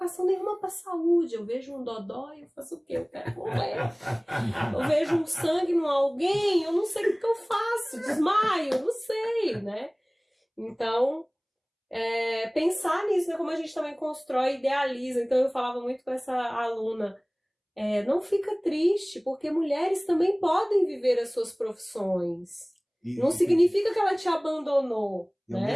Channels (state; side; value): identical; both; correlation 1.00